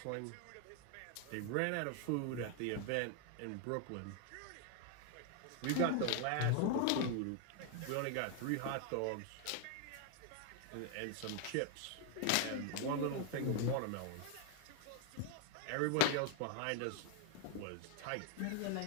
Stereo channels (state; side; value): different; both; correlation 0.00